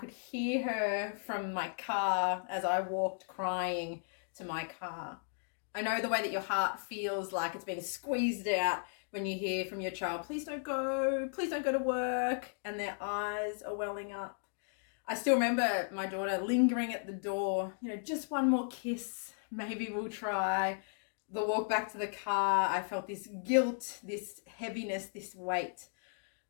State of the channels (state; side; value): silent; right; digital silence